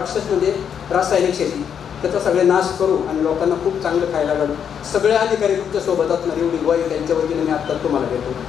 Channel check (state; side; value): quieter; right; 8.0 dB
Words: म्हणजे रासायनिक शेती, त्याचा सगळे नाश करू आणि लोकांना खूप चांगलं खायला घालू. सगळे अधिकारी तुमच्यासोबत असणार एवढी ग्वाही त्यांच्या वतीने मी आत्ता तुम्हाला देतो.